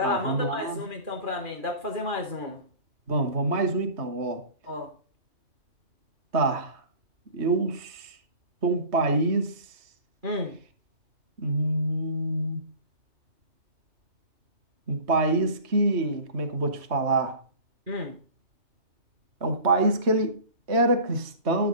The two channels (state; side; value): late; left; 3.1 ms